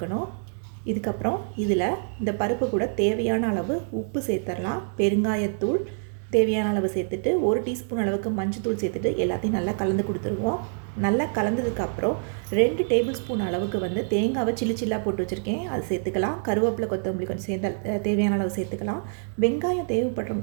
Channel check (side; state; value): left; silent; digital silence